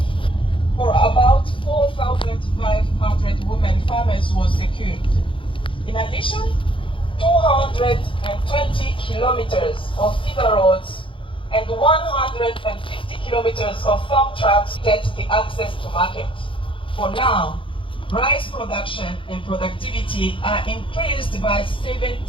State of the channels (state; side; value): late; right; 0.25 ms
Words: about 4,500 women farmers was secured. In addition, 220 kilometers of feeder roads and 150 kilometers of farm tracks get the access to market. For now, rice production and productivity are increased by